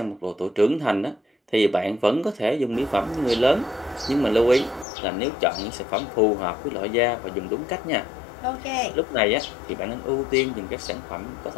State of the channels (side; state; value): right; drops out; at 4.9 s